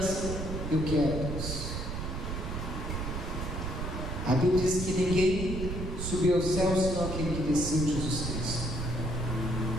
Eu quero, Deus. A Bíblia diz que ninguém subiu aos céus senão aquele que desceu, Jesus Cristo.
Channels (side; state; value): right; noise; rumble, 4 dB below the sound